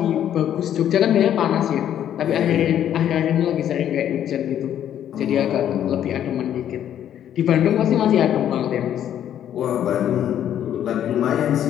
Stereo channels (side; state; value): right; quieter; 10.4 dB